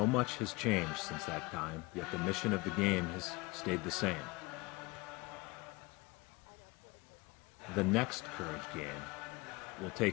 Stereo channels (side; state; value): right; quieter; 23.9 dB